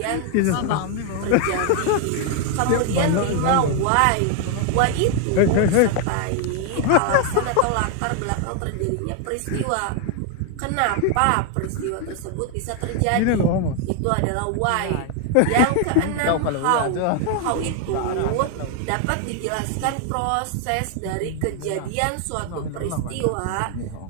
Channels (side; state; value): both; different; correlation 0.00